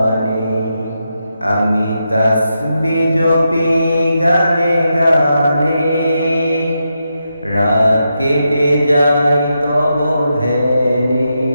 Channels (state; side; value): inverted; both; correlation -0.85